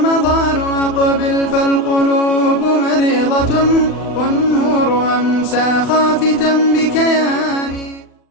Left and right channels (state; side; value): late; right; 40 ms